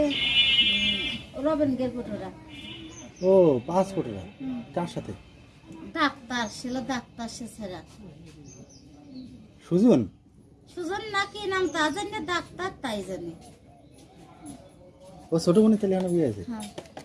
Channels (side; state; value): both; identical; correlation 1.00